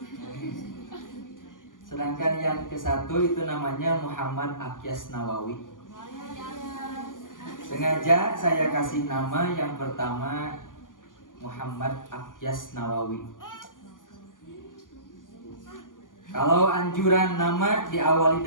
Sedangkan yang ke-1 itu namanya Muhammad Akyas Nawawi. Sengaja saya kasih nama yang pertama Muhammad Akyas Nawawi. Kalau anjuran nama diawali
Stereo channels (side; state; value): right; late; 0.88 ms